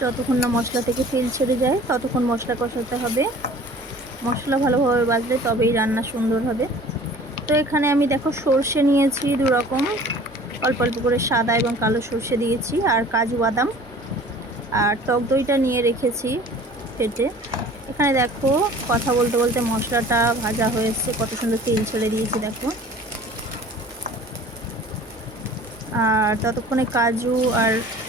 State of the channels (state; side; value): normal; both; correlation 0.47